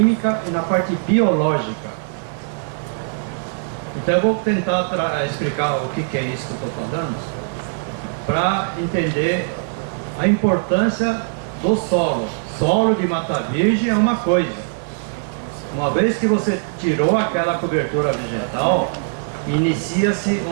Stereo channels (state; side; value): silent; left; digital silence